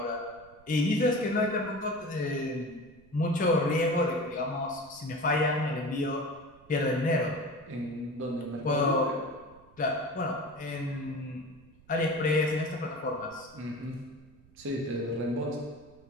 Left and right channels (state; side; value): noise; right; rumble, 26 dB below the sound